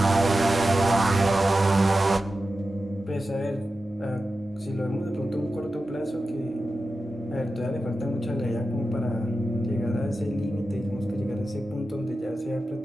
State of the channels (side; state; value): both; normal; correlation 0.92